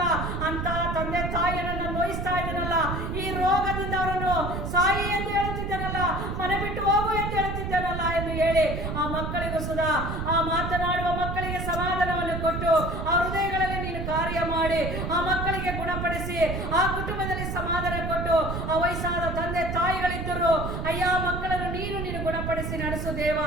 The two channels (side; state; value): right; noise; rumble, 4 dB below the sound